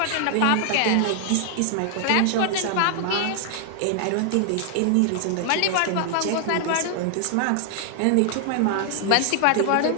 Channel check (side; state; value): both; different; correlation 0.00